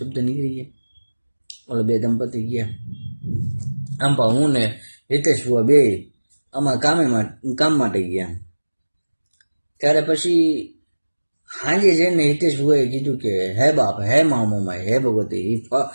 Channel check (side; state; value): both; inverted; correlation -1.00